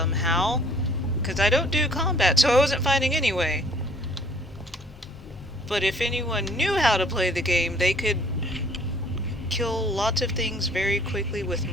because I don't do combat, so I wasn't fighting anyway. But if anyone knew how to play the game, they could kill lots of things very quickly with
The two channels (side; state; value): both; normal; correlation 0.57